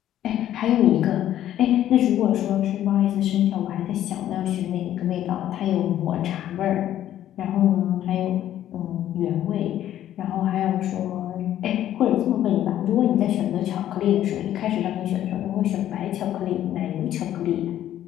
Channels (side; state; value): right; quieter; 12.0 dB